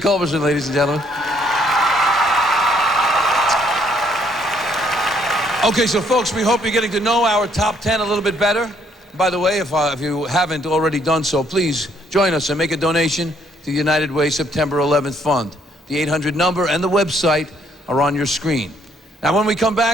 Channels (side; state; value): both; normal; correlation 0.67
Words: ladies and gentlemen. Okay, so folks, we hope you're getting to know our top 10 a little bit better. By the way, if you haven't already done so, please join us and make a donation to the United Way September 11th Fund. The 800 number and the website are on your screen. Now, when we come